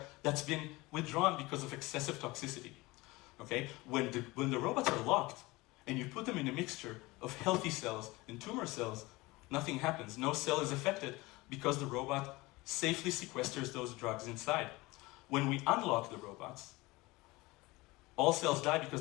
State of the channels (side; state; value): right; quieter; 21.7 dB